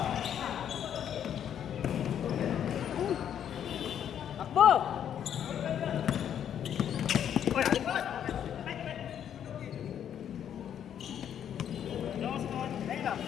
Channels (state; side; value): quieter; right; 9.4 dB